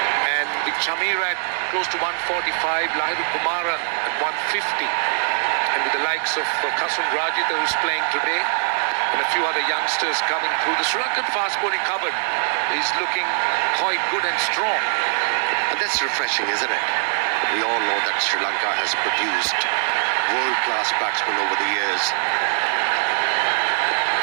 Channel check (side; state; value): left; silent; digital silence